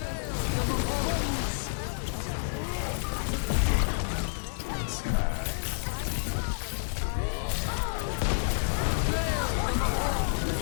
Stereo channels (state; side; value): silent; right; digital silence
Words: a bit of scouting there. We hear Bob come out. We also hear the Doctor using their ultimate on Moira. There's High Noon from the side of the blue team. Manages to find the